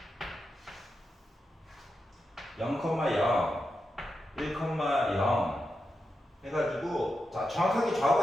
0,0, 1,0 해가지고 자, 정확하게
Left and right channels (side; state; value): both; normal; correlation 0.88